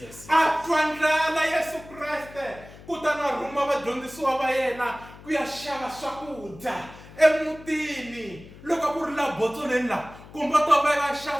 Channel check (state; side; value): noise; left; hum, 19 dB below the sound